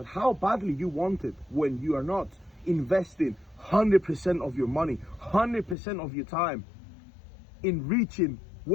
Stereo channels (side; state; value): right; drops out; at 5.8 s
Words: how badly you want it when you are not investing 100% of your money, 100% of your time in reaching